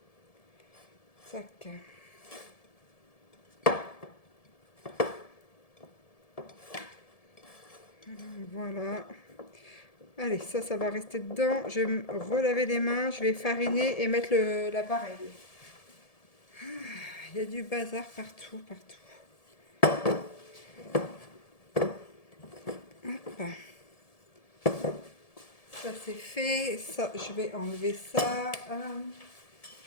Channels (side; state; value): right; late; 1.7 ms